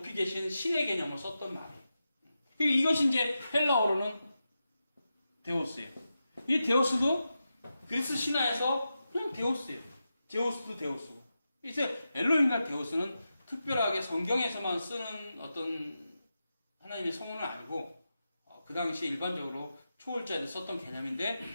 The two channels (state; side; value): inverted; both; correlation -0.90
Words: 계신 신의 개념을 썼던 말이에요. 이것이 이제 헬라어로는 데오스예요. 이 데오스도 그리스 신화에서 그냥 데오스예요. 데오스도 데오스고. 이제 엘로힘과 데오스는 특별하게 성경에서만 쓰는 어떤 하나님의 성원을 알고 그 당시에 일반적으로 초월자에 썼던 개념인데